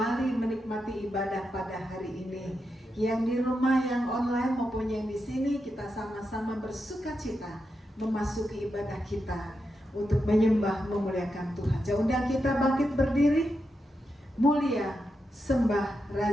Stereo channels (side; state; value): both; normal; correlation 0.86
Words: menikmati ibadah pada hari ini. Yang di rumah, yang online maupun yang di sini, kita sama-sama bersukacita memasuki ibadah kita untuk menyembah, memuliakan Tuhan. Saya undang kita bangkit berdiri. Mulia, sembah